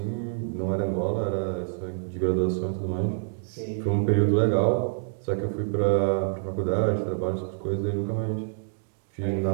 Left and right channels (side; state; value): left; silent; digital silence